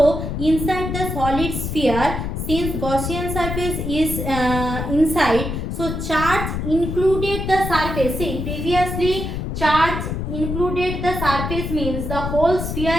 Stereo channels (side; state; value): left; noise; rumble, 4 dB below the sound